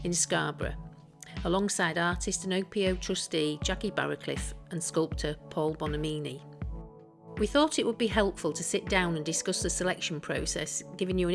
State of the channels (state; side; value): identical; both; correlation 1.00